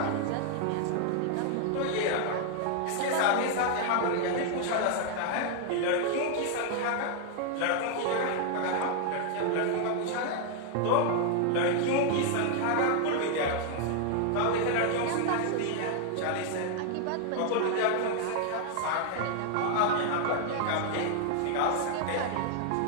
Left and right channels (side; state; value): both; different; correlation 0.00